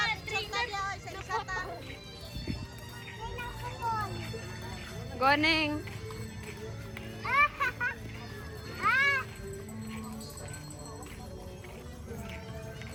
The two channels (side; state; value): both; identical; correlation 1.00